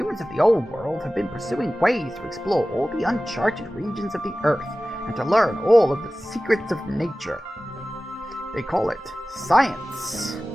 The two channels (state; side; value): normal; both; correlation 0.96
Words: of the old world have been pursuing ways to explore all the uncharted regions of the earth and to learn all of the secrets of nature. They call it science.